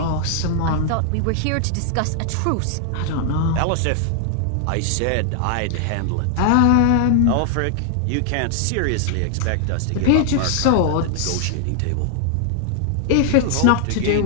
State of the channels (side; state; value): both; different; correlation 0.00